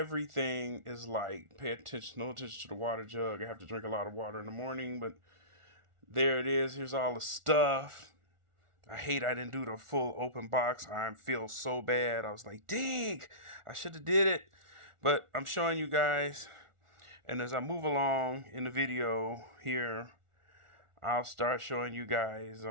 is like. Pay attention, no attention to the water jug. I have to drink a lot of water in the morning, but there it is. Here's all the stuff. I hate I didn't do the full open box. I feel so bad. I was like, dang, I should have did it. But I'm showing you guys. And as I move along in the video here, I'll start showing you guys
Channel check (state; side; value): late; left; 1.4 ms